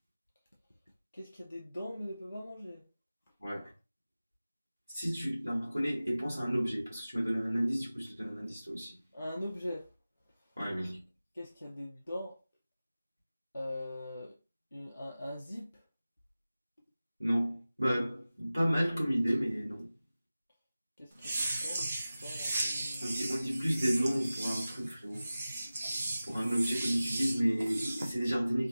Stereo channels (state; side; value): inverted; both; correlation -0.96